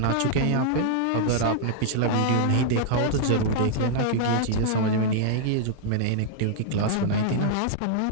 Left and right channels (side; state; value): both; different; correlation -0.01